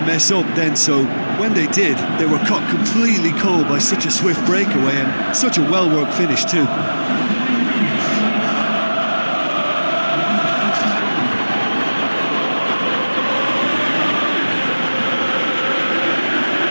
mess up then, so when they did, they were caught completely cold by such a swift breakaway and such a well-worked finish too.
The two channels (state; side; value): inverted; both; correlation -1.00